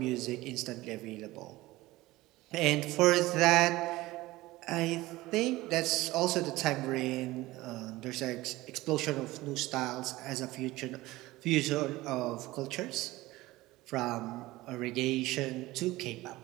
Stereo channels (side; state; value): left; quieter; 18.6 dB